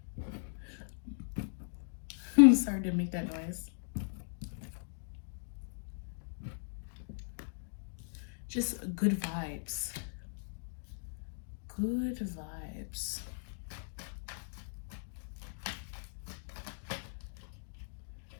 I'm sorry to make that noise. Just good vibes. Good vibes.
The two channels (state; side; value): silent; right; digital silence